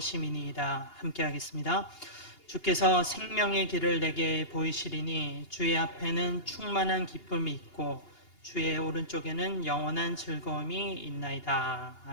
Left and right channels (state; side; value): late; right; 2.8 ms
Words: 함께 하겠습니다. 주께서 생명의 길을 내게 보이시리니 주의 앞에는 충만한 기쁨이 있고 주의 오른쪽에는 영원한 즐거움이 있나이다.